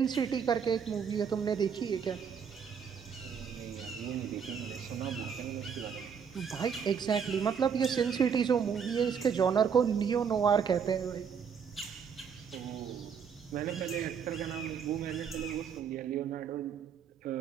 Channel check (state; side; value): quieter; left; 7.0 dB